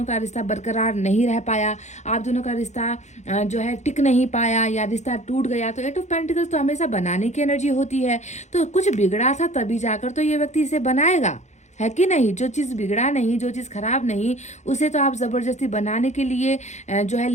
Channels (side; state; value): right; late; 0.33 ms